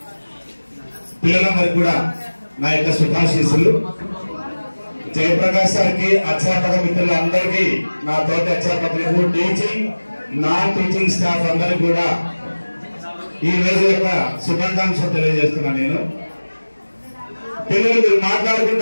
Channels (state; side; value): inverted; both; correlation -1.00